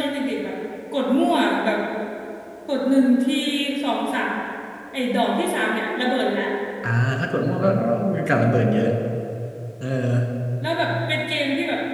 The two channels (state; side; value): identical; both; correlation 1.00